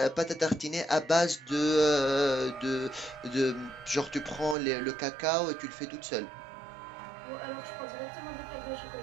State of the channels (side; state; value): left; drops out; at 4.5 s